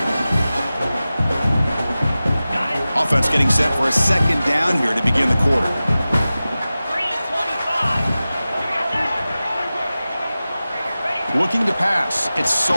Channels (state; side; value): inverted; both; correlation -0.96